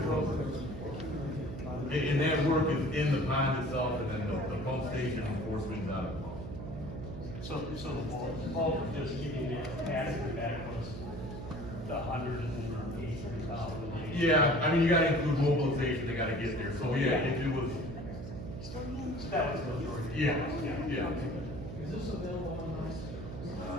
program. And that work is in the pond itself, and then the pump station and force mains out of the pond. So the bulk of just giving the capacity back was the 183,000. Yeah, I mean, you gotta include mobilization, they gotta get there, so yeah, if it was, That was the majority. yeah, yeah. Is this available online? I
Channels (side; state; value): right; noise; hum, 9 dB below the sound